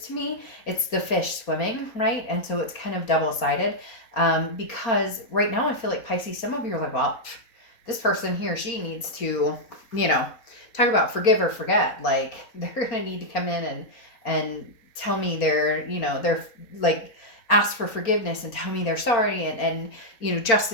to me, it's the fish swimming, right? And so it's kind of double-sided, because right now I feel like, Pisces, some of you are like, well, this person, he or she, needs to, talk about forgive or forget. Like, they're gonna need to come in and tell me they're like, ask for forgiveness and tell me they're sorry, and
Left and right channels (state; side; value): late; right; 4.3 ms